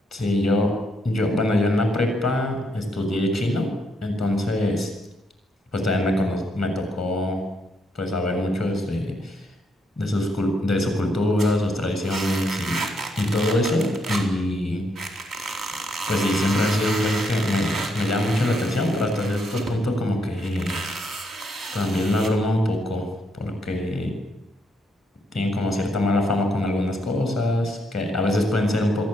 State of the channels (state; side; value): normal; both; correlation 0.76